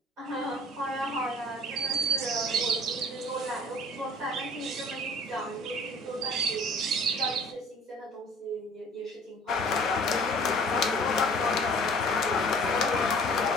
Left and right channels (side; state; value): both; normal; correlation 0.50